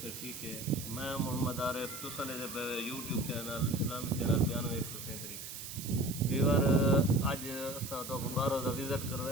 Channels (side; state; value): right; noise; hiss, 9 dB below the sound